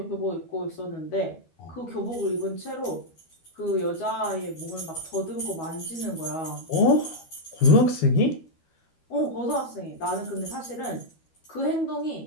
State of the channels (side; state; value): right; late; 12 ms